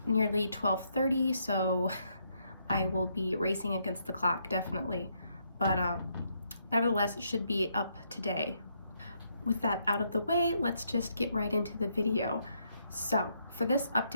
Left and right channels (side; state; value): both; inverted; correlation -0.75